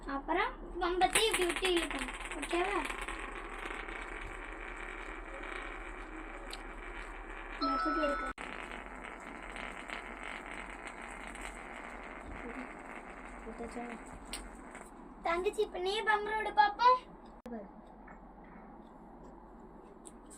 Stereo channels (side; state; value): both; identical; correlation 1.00